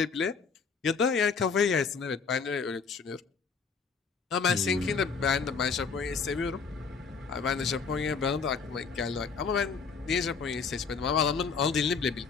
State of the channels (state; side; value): quieter; right; 5.3 dB